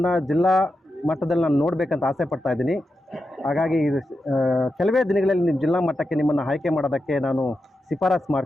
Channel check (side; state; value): both; normal; correlation 0.88